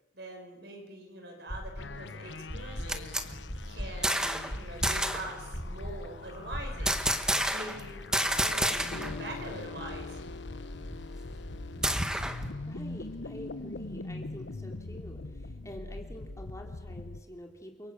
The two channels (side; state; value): both; normal; correlation 0.48